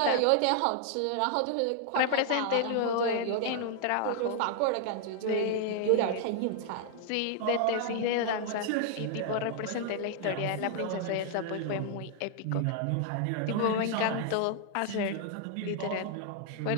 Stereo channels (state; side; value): different; both; correlation 0.00